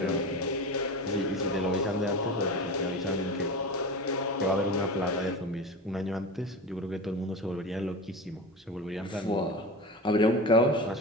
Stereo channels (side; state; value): both; normal; correlation 0.28